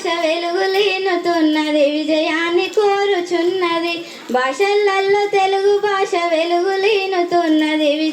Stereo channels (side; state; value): both; identical; correlation 1.00